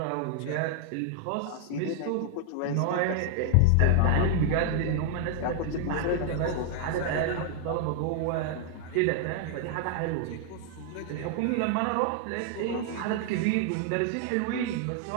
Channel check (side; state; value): both; different; correlation 0.00